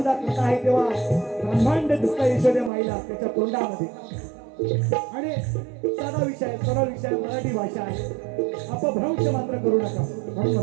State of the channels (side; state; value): left; drops out; at 2.7 s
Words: कथा आहे. तेव्हा ब्रह्मांड दिसतं यशोद्या माईला त्याच्या तोंडामध्ये. आणि साधा विषय सरळ विषय मराठी भाषा आहे. अपभ्रंश मात्र करू नका म्हणून